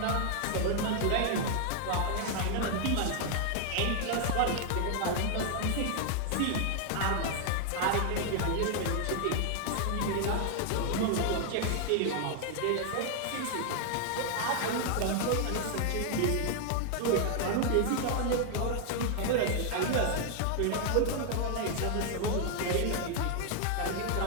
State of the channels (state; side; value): different; both; correlation 0.00